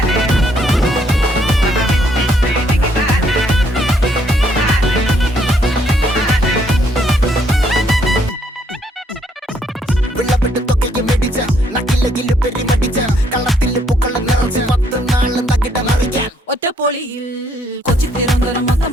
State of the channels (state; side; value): normal; both; correlation 0.69